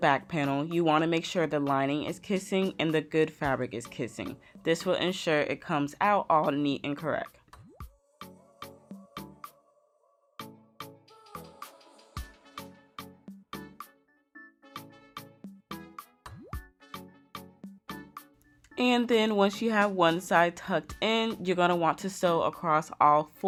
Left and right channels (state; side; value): identical; both; correlation 1.00